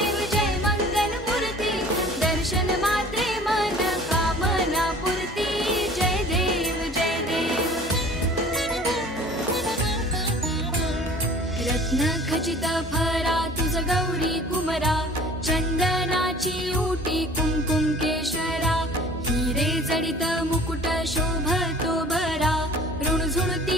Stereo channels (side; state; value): both; normal; correlation 0.47